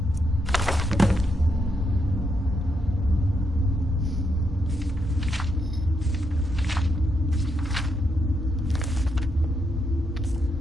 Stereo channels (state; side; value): normal; both; correlation 0.80